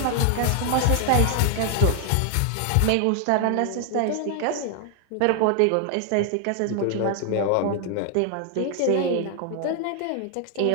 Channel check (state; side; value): different; both; correlation 0.00